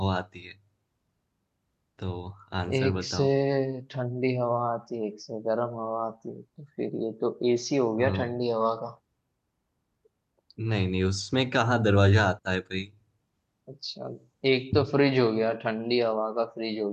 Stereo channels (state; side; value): identical; both; correlation 1.00